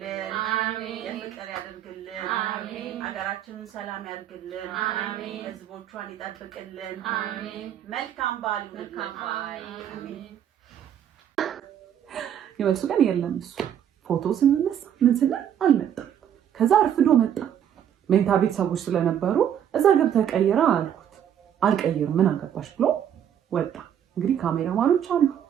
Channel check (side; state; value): left; quieter; 9.6 dB